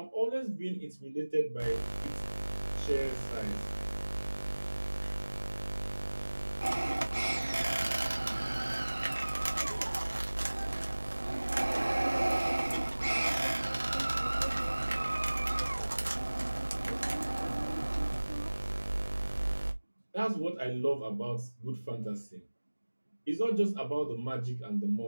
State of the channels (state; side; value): inverted; both; correlation -1.00